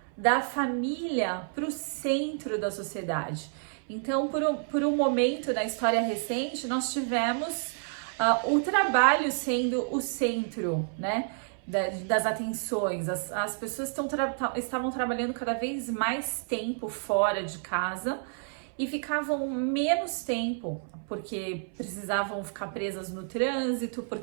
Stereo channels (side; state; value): left; silent; 58 dB below the other